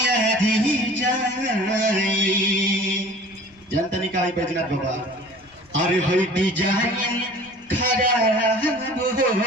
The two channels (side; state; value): left; noise; rumble, 29 dB below the sound